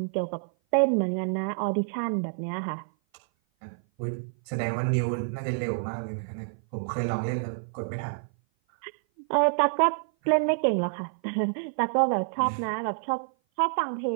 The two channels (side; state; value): left; silent; 56 dB below the other